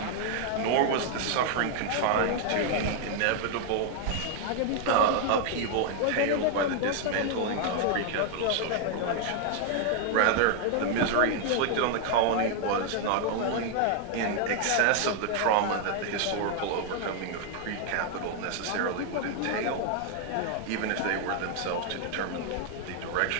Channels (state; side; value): different; both; correlation 0.00